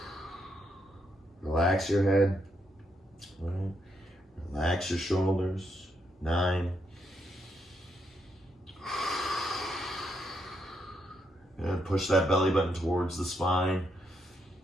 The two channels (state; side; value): normal; both; correlation 0.78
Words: Relax your head. Right. Relax your shoulders. 9. Good. Push that belly button towards the spine.